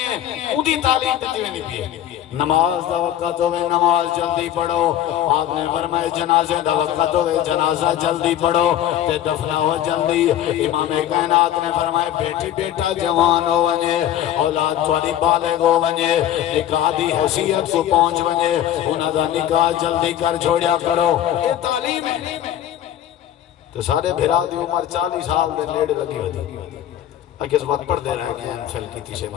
اونی تعلیم دیتی ہوئی نہیں بھی نماز دا وقت ہوئے نماز جلدی پڑھو آپ نے فرمائے جنازے دا وقت ہوئے جنازہ جلدی پڑھو تے دفنہ ہو جلدی امام کائنات نے فرمائے بیٹی بیٹا جوان ہو ونجے اولاد تھوڑی بالغ ہو ونجے نکاح دی حیثیت کو پہنچ ونجے انہاں دا نکاح جلدی کر چھوڑیا کرو یہ تعلیم ہے تو سارے بھرا دی عمر 40 سال دے لیڑے لگی ہوتی اگر اس بات پڑھ دے رہے ہیں ایم فیل کی تیسے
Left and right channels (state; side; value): quieter; right; 11.5 dB